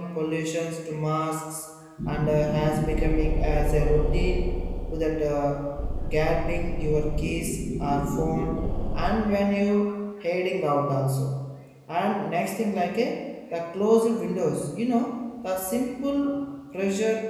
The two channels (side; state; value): both; identical; correlation 1.00